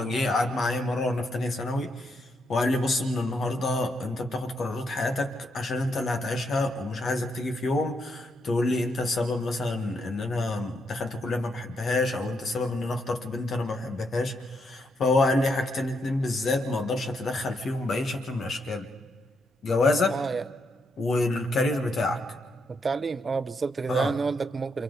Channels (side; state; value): both; normal; correlation 0.79